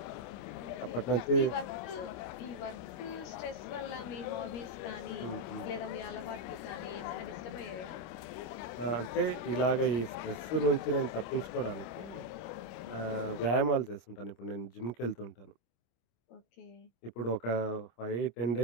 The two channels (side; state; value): right; late; 25 ms